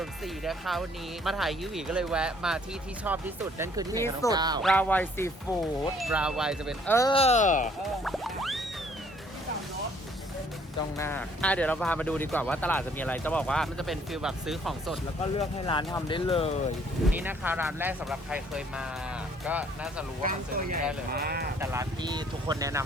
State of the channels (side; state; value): both; normal; correlation 0.61